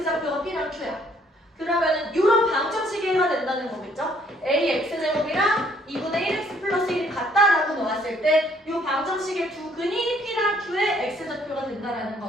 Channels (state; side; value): normal; both; correlation 0.64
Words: P랑 Q야. 그러면은 이런 방정식이 해가 된다는 거겠죠? AX제곱이랑 2분의 1x 플러스 1이 같다라고 놓았을 때 이 방정식의 두 근이 P랑 Q의 X좌표가 된다라는